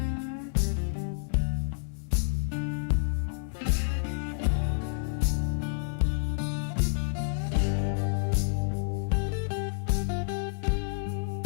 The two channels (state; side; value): silent; right; 58 dB below the other